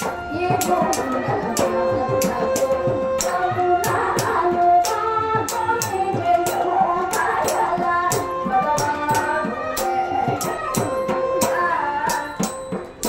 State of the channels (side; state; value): both; identical; correlation 1.00